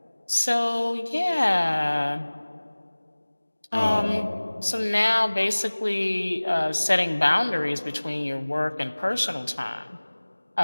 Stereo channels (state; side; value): inverted; both; correlation -1.00